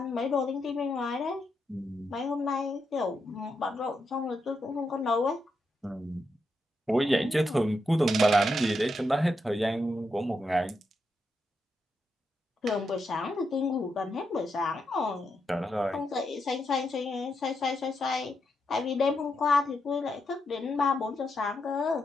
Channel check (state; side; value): normal; both; correlation 0.83